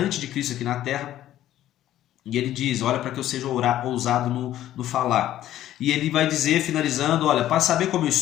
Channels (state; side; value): quieter; right; 12.9 dB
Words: de Cristo aqui na terra. E ele diz, olha, para que eu seja ousado no falar. E ele vai dizer, finalizando, olha, para saber como eu